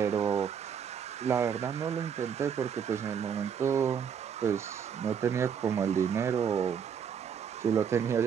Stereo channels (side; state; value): left; quieter; 7.6 dB